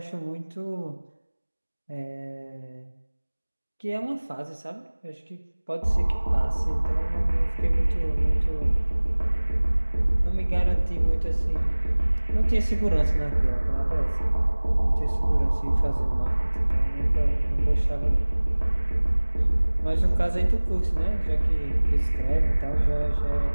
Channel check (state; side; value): inverted; both; correlation -1.00